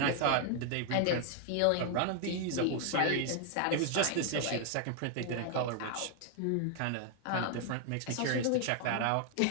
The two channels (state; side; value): different; both; correlation 0.00